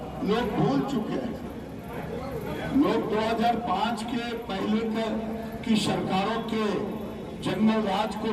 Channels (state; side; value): identical; both; correlation 1.00